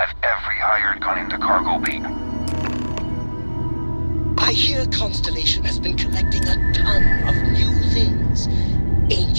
every hired gun in the cargo bay. I hear Constellation has been collecting a ton of new things.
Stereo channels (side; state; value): both; inverted; correlation -1.00